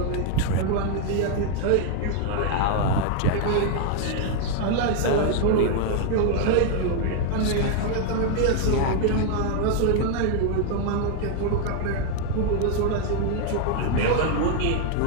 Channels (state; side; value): different; both; correlation 0.00